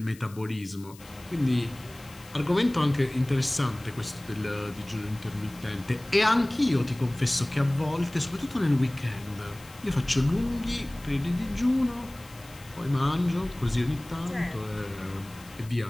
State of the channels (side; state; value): left; noise; hiss, 22 dB below the sound